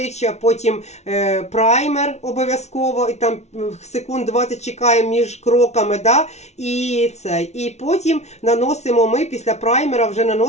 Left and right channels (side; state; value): right; late; 0.32 ms